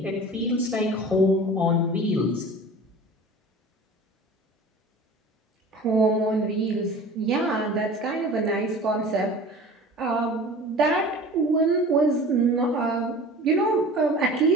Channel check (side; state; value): both; normal; correlation 0.40